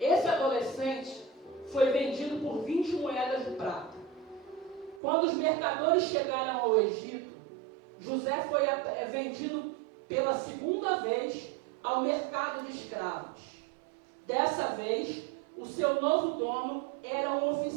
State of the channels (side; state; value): left; drops out; at 5.0 s